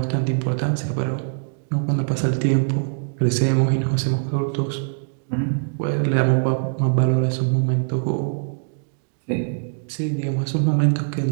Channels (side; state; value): left; silent; digital silence